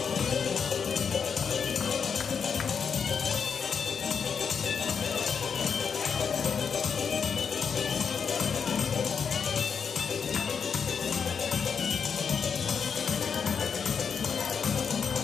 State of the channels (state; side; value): quieter; right; 6.4 dB